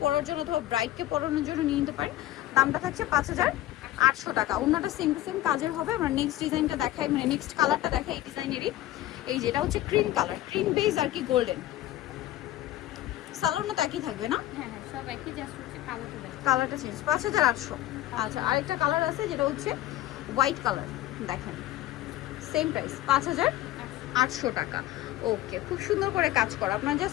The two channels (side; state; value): right; quieter; 15.0 dB